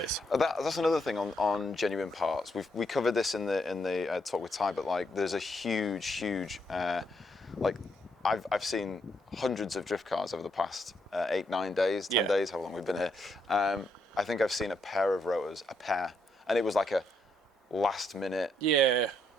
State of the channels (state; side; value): normal; both; correlation 0.77